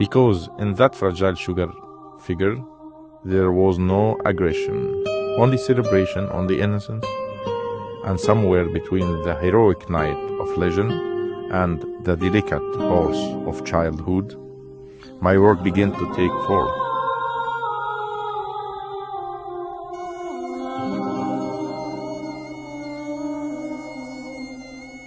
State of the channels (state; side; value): identical; both; correlation 1.00